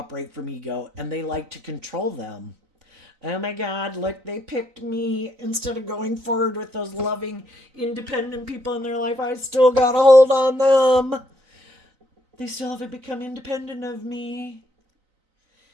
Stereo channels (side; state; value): left; late; 3.9 ms